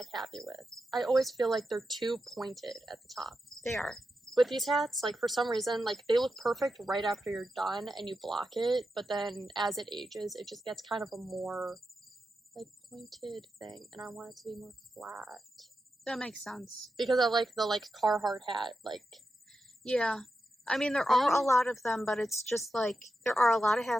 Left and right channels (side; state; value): both; normal; correlation 0.89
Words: happy with. I always feel like they're too pointed at the top. They are. With these hats, like for some reason, like they look perfect right after you're done and you block it, but then as it ages, it just gets kind of a more like pointed thing, and I want it to be more flat. That makes sense. Because I like the like Carhartt hat, like. Yeah. I mean, there are a lot of them, but it's just like, there are a lot of